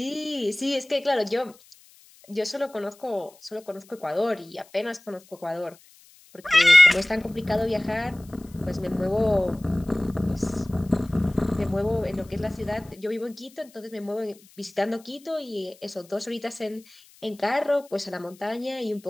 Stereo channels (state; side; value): noise; left; hiss, 26 dB below the sound